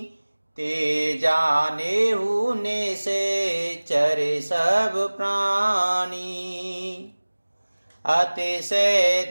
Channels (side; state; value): both; inverted; correlation -1.00